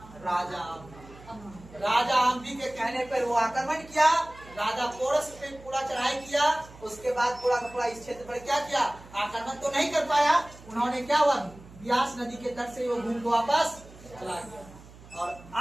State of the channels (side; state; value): right; noise; hum, 20 dB below the sound